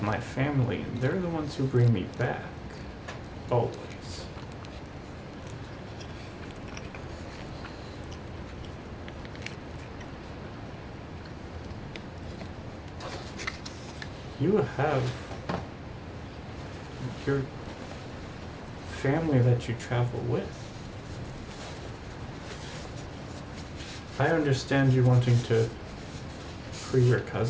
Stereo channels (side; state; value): both; identical; correlation 1.00